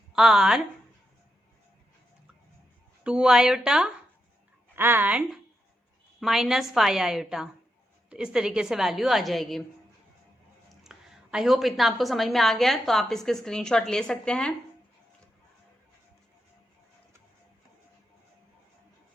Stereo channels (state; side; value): normal; both; correlation 0.85